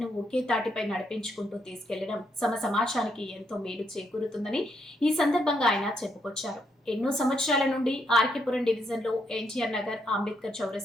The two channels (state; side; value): normal; both; correlation 0.77